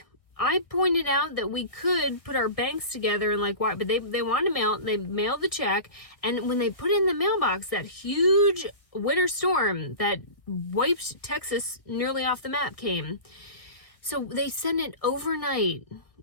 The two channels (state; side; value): late; right; 1.3 ms